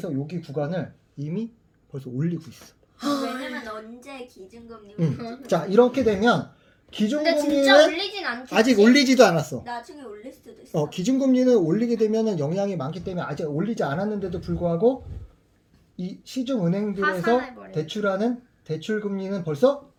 여기 구간을 이미 벌써 올리고 있어. 왜냐면 언제 기준금리 자 이렇게 되면 근데 진짜 기준금리는 올리진 않겠지. 아직 올리지도 않았어. 나중에 올릴 수도 있어. 기준금리는 올리게 되면은 영향이 많기 때문에 아직 올리지 않았는데도 불구하고 이 시중은행들에서 파산해버려. 대출하는 대출금리는 벌써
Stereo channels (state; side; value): identical; both; correlation 1.00